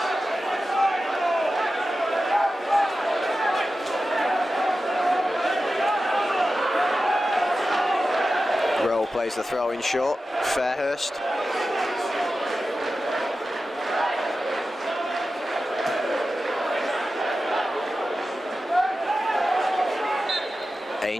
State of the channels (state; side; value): normal; both; correlation 0.93